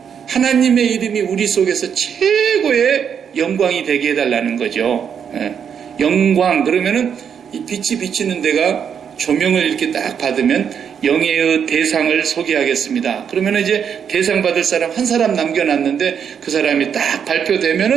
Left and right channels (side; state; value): left; quieter; 7.7 dB